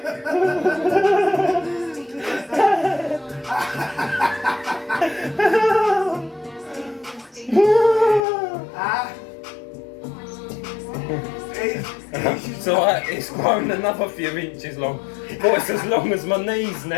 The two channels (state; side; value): drops out; right; at 8.2 s